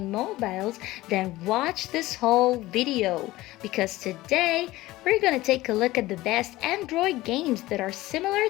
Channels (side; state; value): right; quieter; 17.9 dB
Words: mobiles, then watch this whole video because today we're gonna take a look at the best Android games that are similar